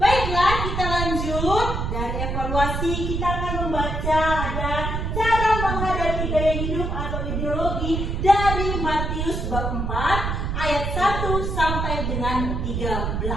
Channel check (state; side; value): noise; right; rumble, 2 dB below the sound